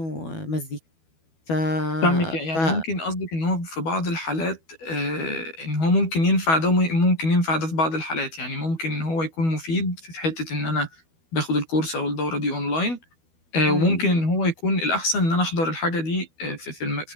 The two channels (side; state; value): right; late; 12 ms